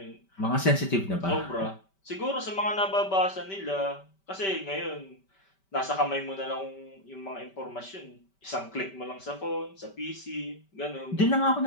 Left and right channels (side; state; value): right; late; 5.2 ms